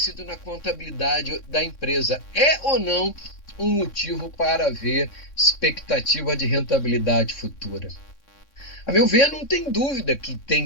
na contabilidade da empresa. É ou não um motivo para haver expectativa de rentabilidade futura? A meu ver, não tem dúvida que tem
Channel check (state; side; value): late; right; 3.6 ms